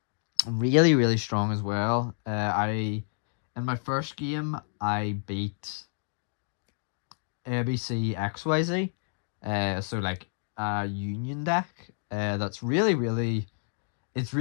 Really, really strong as well. I In my first game I beat ABC XYZ. So like a union deck. That's really, really it's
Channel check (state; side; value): silent; right; digital silence